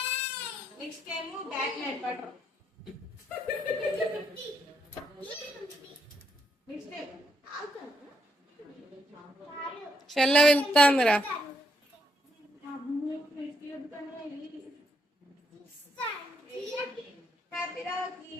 Next time back night butter. చెల్ల వెళ్తాందిరా.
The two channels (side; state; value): both; normal; correlation 0.76